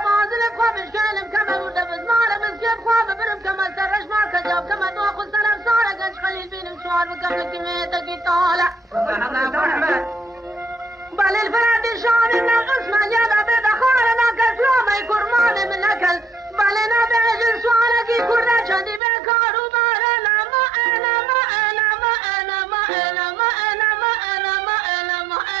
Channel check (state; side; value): drops out; left; at 19.0 s